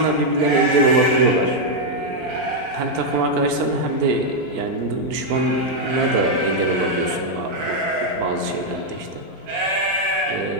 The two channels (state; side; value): late; left; 4.4 ms